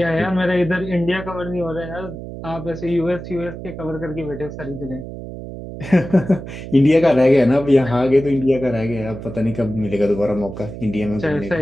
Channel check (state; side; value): noise; right; hum, 10 dB below the sound